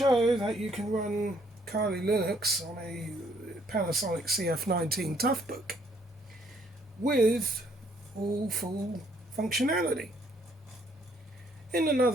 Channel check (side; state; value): both; normal; correlation 0.66